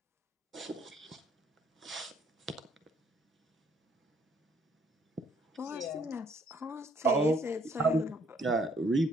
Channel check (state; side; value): normal; both; correlation 0.65